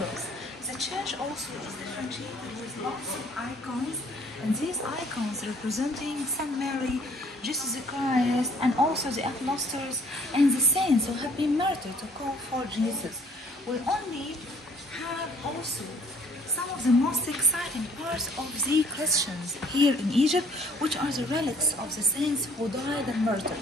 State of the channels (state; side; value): normal; both; correlation 0.60